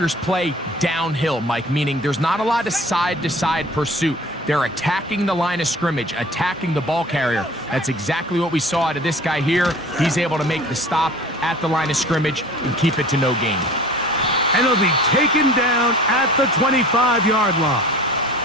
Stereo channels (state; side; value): normal; both; correlation 0.45